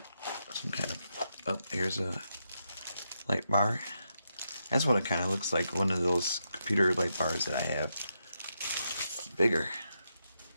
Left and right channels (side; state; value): both; inverted; correlation -0.83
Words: some kind of, oh, here's a light bar. That's what it kind of looks like, one of those computer light bars that I have. Bigger.